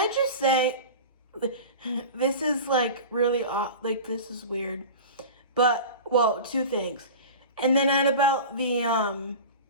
just say, this is like really like this is weird. But well, two things. And then at about the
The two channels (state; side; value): inverted; both; correlation -0.33